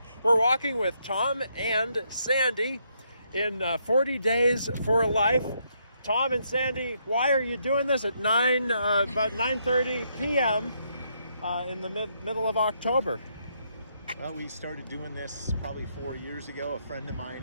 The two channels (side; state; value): both; inverted; correlation -0.76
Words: we're walking with Tom and Sandy in 40 Days for Life. Tom and Sandy, why are you doing this at about 9:30 p.m. In the middle of October? Well, we started doing this probably 4 years ago. A